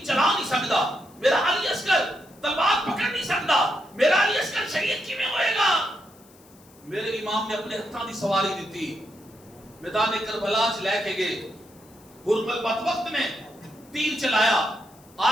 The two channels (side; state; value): left; noise; hiss, 27 dB below the sound